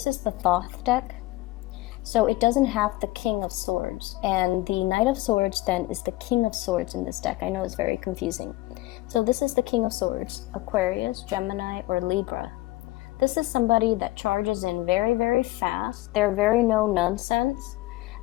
is the Thoth deck. So it doesn't have the King of Swords. And the Knight of Swords then is the King of Swords in this deck. I know it's very confusing. So this is the King of Swords, Aquarius, Gemini, or Libra. This is somebody that charges in very, very fast. They're very no nonsense.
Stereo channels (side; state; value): right; quieter; 19.4 dB